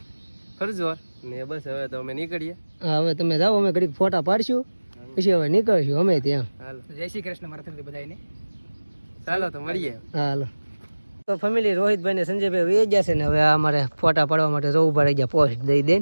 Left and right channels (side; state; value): both; inverted; correlation -1.00